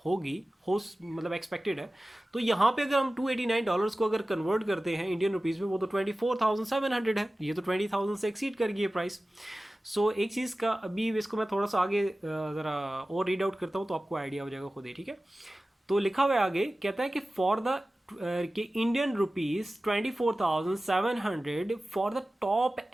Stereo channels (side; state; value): both; normal; correlation 0.96